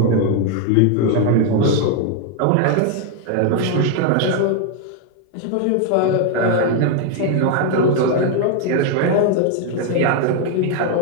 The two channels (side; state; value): both; different; correlation 0.01